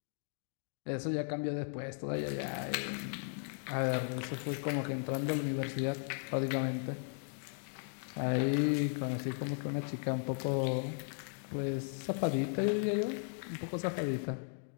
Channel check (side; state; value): right; silent; 54 dB below the other